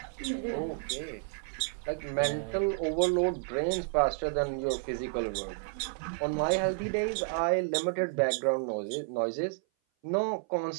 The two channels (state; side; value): silent; left; 57 dB below the other